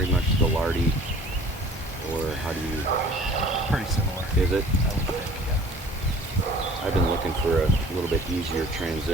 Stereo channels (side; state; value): both; normal; correlation 0.50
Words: much the lardy, or how do you? Pretty similar. Is it? I would think, yeah. I've been looking for a little bit easier